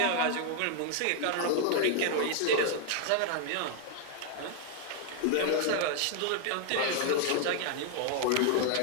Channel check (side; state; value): both; different; correlation 0.00